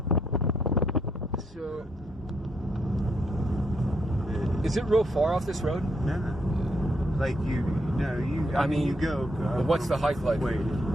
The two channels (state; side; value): normal; both; correlation 0.76